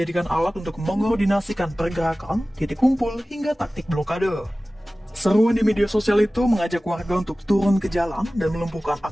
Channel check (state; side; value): normal; both; correlation 0.97